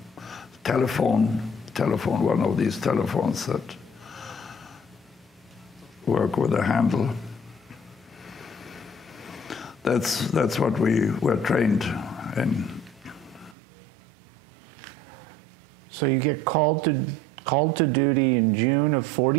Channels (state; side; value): drops out; left; at 13.6 s